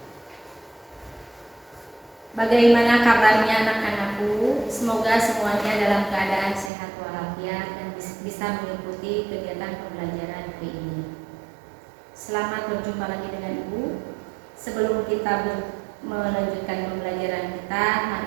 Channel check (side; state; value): left; drops out; at 6.7 s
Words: Bagaimana kabarnya anak-anakku? Semoga semuanya dalam keadaan sehat walafiat dan bisa mengikuti kegiatan pembelajaran hari ini. Selamat berjumpa lagi dengan Ibu. Sebelum kita melanjutkan pembelajaran kita,